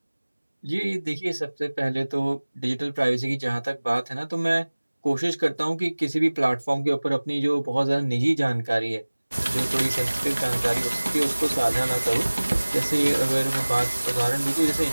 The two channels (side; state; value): both; inverted; correlation -1.00